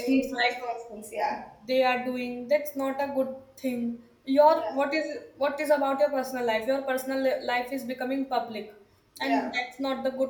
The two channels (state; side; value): identical; both; correlation 1.00